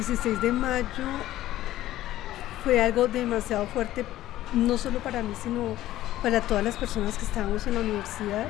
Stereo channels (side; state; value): right; quieter; 14.5 dB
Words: de mayo fue algo demasiado fuerte, no solo para mí, sino para todas las personas que estábamos en la universidad.